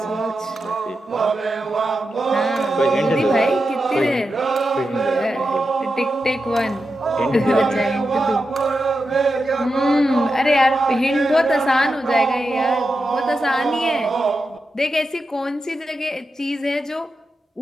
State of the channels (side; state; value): both; normal; correlation 0.89